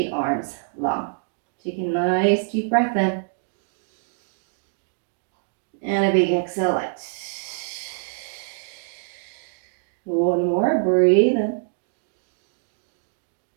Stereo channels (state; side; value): silent; left; digital silence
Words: arms long. Take a nice deep breath in. And a big exhale out. One more, breathe in.